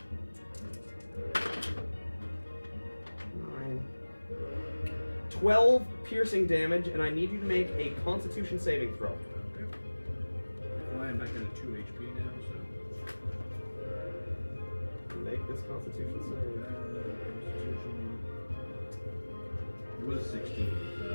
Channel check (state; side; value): inverted; both; correlation -1.00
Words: 12 piercing damage, and I need you to make a Constitution saving throw. Okay. Well, I'm back down to 2 HP now, so. Make this Constitution save. Constitution. It was 16.